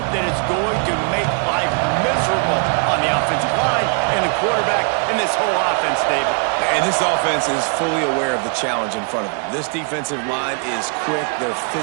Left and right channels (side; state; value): left; quieter; 39.6 dB